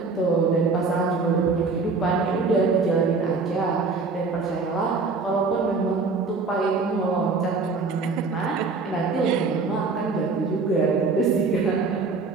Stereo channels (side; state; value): left; quieter; 4.2 dB